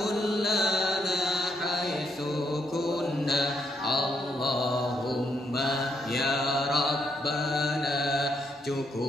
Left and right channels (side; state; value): both; normal; correlation 0.75